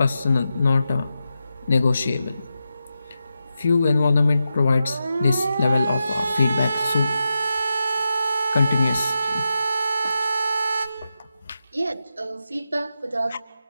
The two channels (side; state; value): both; inverted; correlation -0.89